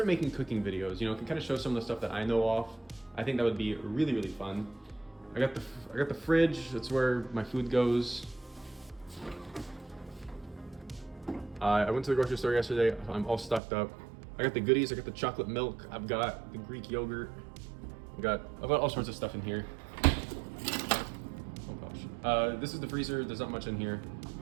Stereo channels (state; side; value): drops out; left; at 13.6 s